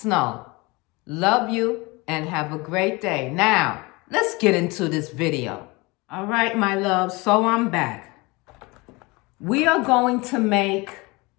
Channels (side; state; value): right; quieter; 24.8 dB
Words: Love you and have a great day. Now, let's get into this video. All right, my love, so I'm back. We are going to make